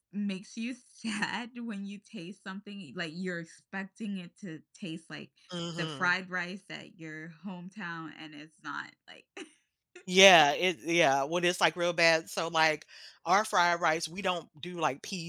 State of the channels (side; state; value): both; identical; correlation 1.00